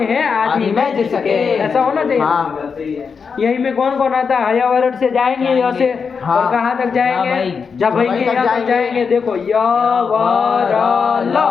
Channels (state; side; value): quieter; right; 5.7 dB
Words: है आदि में जिसके, ऐसा होना चाहिए। हाँ। यही में कौन कौन आता है? हयावरण से जाएंगे यहाँ से, हाँ। और कहाँ तक जाएंगे? जब भाई के यहाँ तक जाएंगे। देखो य व र ल